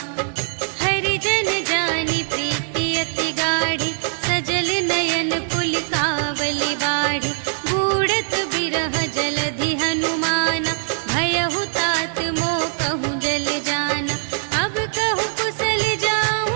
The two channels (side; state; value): left; silent; digital silence